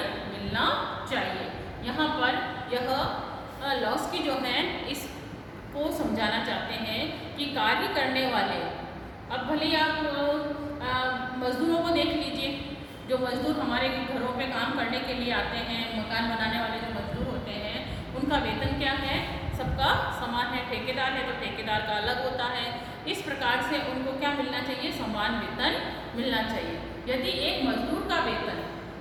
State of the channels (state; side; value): identical; both; correlation 1.00